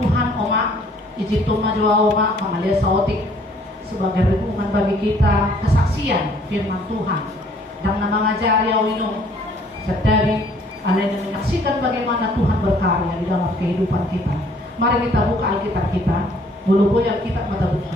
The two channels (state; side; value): normal; both; correlation 0.60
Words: Oma, izin Tuhan jua Oma, mengalir saotik sebagai renungan bagi kita, kesaksian firman Tuhan dan nama ngajari awino setari alena menyaksikan bagaimana Tuhan berkarya di dalam kehidupan kita. Mari kita buka Alkitab kita, mulu yang kita mata